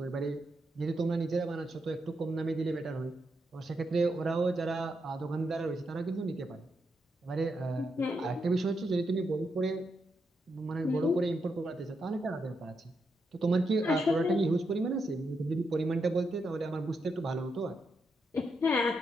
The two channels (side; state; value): both; normal; correlation 0.82